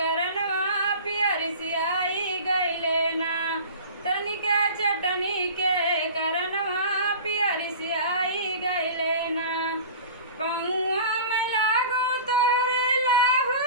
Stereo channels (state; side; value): inverted; both; correlation -0.38